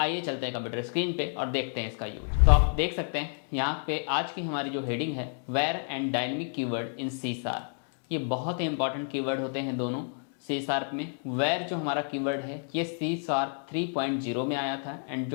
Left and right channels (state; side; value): silent; right; 58 dB below the other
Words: चलते हैं कंप्यूटर स्क्रीन पे और देखते हैं इसका यूज। तो आप देख सकते हैं यहाँ पे आज की हमारी जो हेडिंग है, var and dynamic keyword in C sharp. ये बहुत ही इंपॉर्टेंट कीवर्ड होते हैं दोनों सी शार्प में। वेयर जो हमारा कीवर्ड है ये सी शार्प 3.0 में आया था, एंड